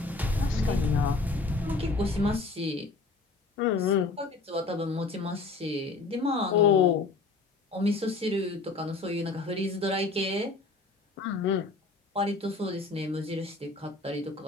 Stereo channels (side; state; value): right; quieter; 3.7 dB